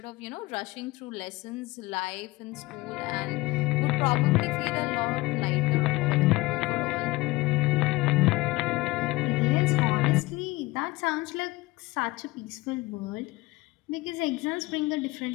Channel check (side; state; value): right; quieter; 21.1 dB